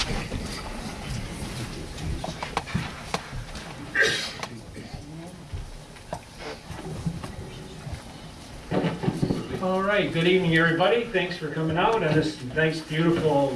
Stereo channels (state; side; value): identical; both; correlation 1.00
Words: All right, good evening, everybody. Thanks for coming out on this nice,